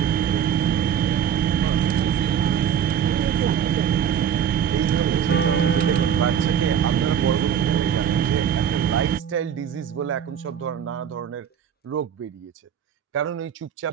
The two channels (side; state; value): left; quieter; 8.7 dB